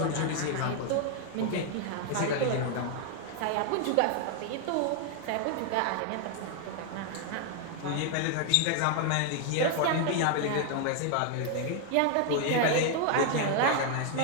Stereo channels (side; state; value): both; different; correlation 0.00